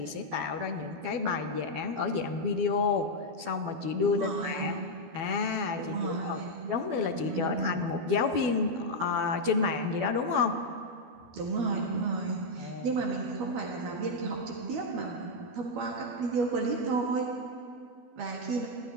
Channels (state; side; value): late; left; 12 ms